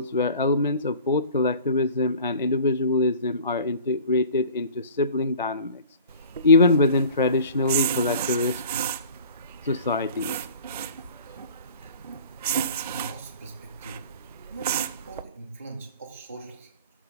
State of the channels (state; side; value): inverted; both; correlation -0.44